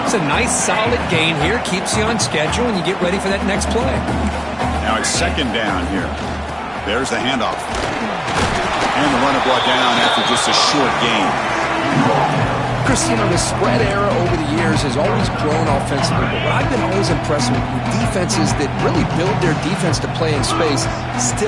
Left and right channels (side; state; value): both; identical; correlation 1.00